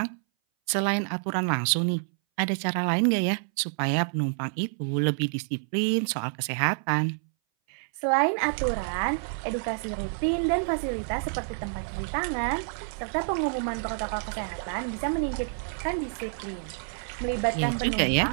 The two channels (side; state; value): left; silent; 59 dB below the other